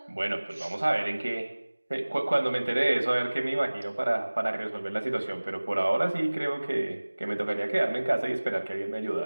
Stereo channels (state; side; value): inverted; both; correlation -1.00